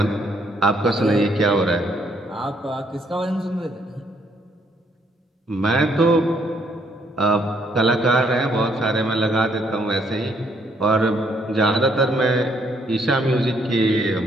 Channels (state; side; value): normal; both; correlation 0.69